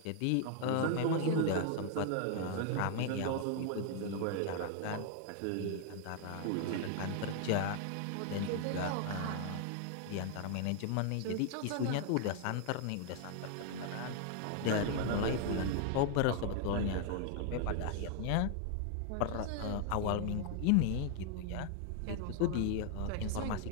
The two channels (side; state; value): both; different; correlation 0.00